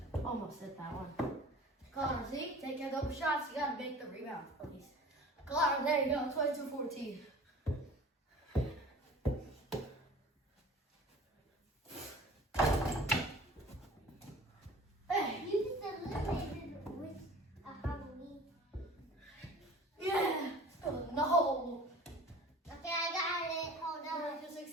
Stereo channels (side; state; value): both; normal; correlation 0.44